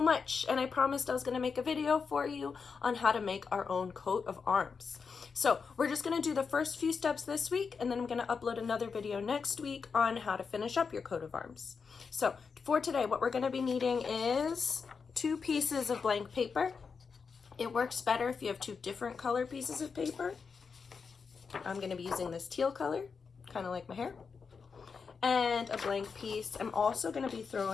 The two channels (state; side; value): quieter; right; 5.5 dB